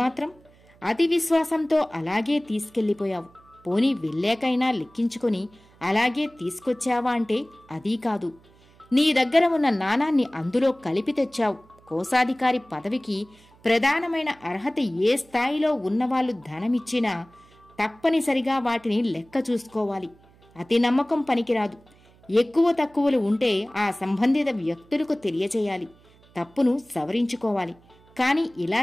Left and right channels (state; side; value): noise; right; hum, 28 dB below the sound